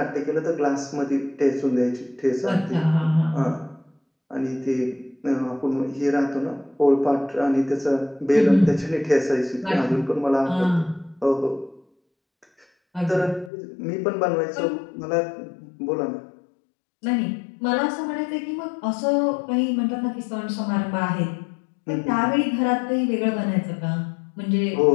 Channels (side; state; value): right; drops out; at 13.5 s